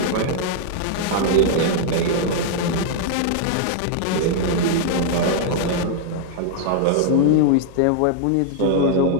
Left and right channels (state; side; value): different; both; correlation -0.01